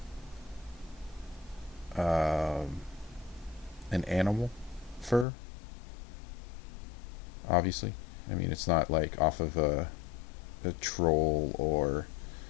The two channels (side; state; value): right; drops out; at 5.2 s